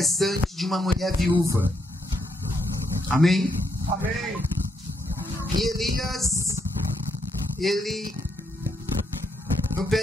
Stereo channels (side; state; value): both; normal; correlation 0.77